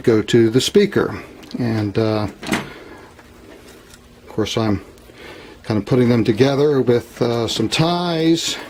go to the speaker, and of course I'm kind of putting them together with some ties,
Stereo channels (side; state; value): both; identical; correlation 1.00